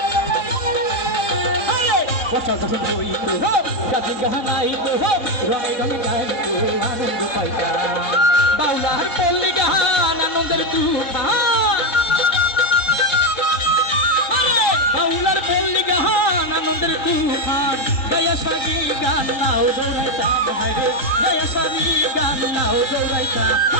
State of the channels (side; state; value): right; late; 3.7 ms